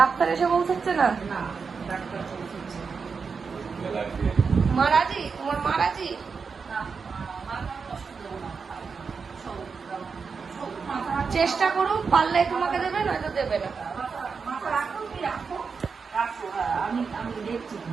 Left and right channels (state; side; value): quieter; left; 5.3 dB